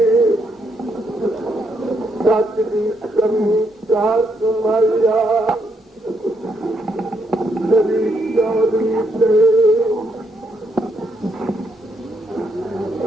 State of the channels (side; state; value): both; normal; correlation 0.76